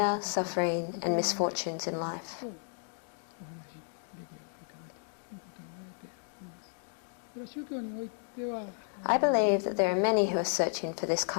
suffering, and misfortunes in life. I believe that there are many who are searching for this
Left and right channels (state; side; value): silent; right; 56 dB below the other